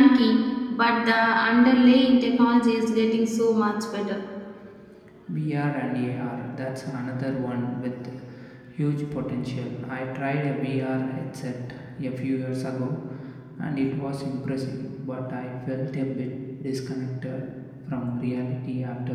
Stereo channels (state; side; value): identical; both; correlation 1.00